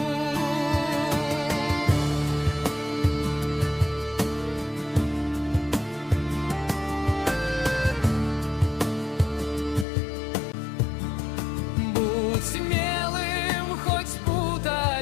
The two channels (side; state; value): right; drops out; at 9.9 s